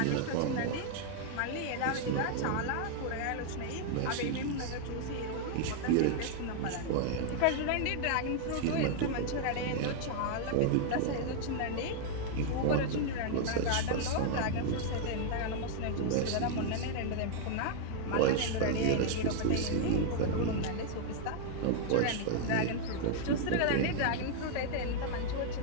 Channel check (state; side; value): different; both; correlation 0.00